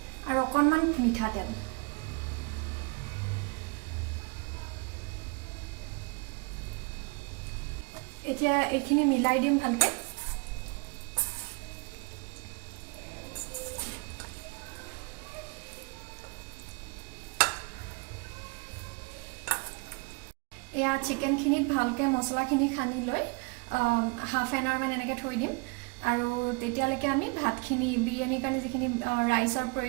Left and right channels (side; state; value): left; quieter; 30.5 dB